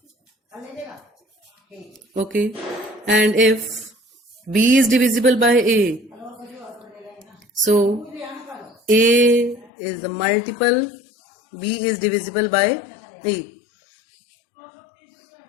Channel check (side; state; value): right; drops out; at 9.7 s